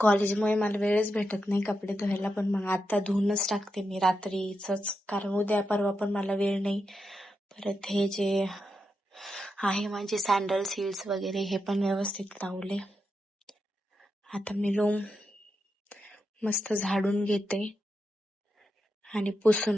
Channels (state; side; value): normal; both; correlation 0.86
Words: कॉलेजमुळे मला वेळच भेटत नाही कपडे धुवायला, पण मग आता धुवूनच टाकते मी रात्रीच, कारण उद्या परवा पण मला वेळ नाही. परत हे जे आहे माझे सँडल्स हिल्स वगैरे हे पण व्यवस्थित लावले. आता मी रूम मस्त झाडून घेते आणि